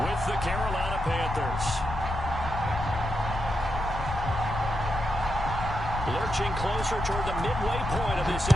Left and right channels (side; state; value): left; noise; rumble, 6 dB below the sound